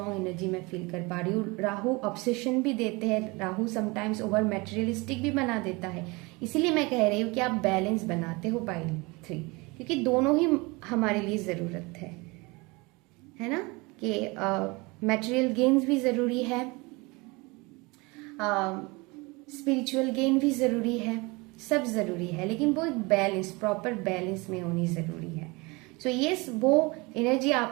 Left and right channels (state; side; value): quieter; left; 25.6 dB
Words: एनर्जी मैं फील कर पा रही हूँ। राहु ऑब्सेशन भी देते हैं, राहु समटाइम्स ओवर मटेरियलिस्टिक भी बना देता है। इसीलिए मैं कह रही हूँ कि आप बैलेंस बनाते हो पाइल 3, क्योंकि दोनों ही हमारे लिए ज़रूरत है ना, कि मटेरियल गेन्स भी ज़रूरी है, स्पिरिचुअल गेन भी ज़रूरी है, सब ज़रूरी है, लेकिन वो एक बैलेंस, प्रॉपर बैलेंस में होनी ज़रूरी है। सो यस, वो एनर्जी